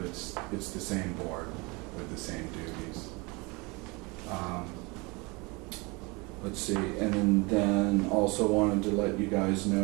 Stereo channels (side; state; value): left; quieter; 27.1 dB